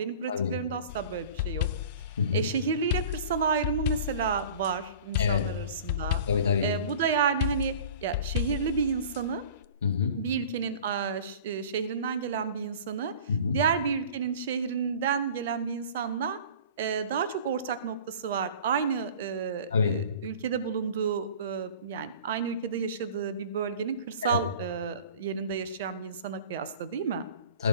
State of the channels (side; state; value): both; inverted; correlation -0.42